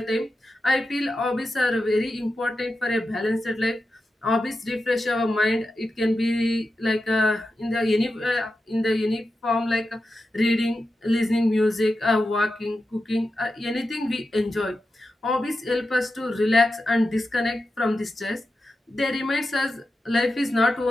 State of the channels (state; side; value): normal; both; correlation 0.90